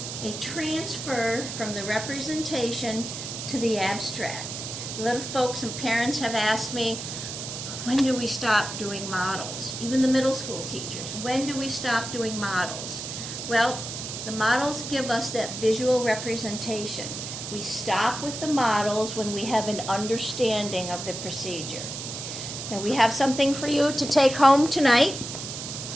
They transfer from the representation to the abstract. A lot of folks and parents have asked me, when do we stop doing models? Even the middle school teachers, when do we stop doing models? Well, the models give us that visual representation. We stop with the models when we have an understanding of the procedure. Now we have something for you to take home tonight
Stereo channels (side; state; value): right; noise; hiss, 7 dB below the sound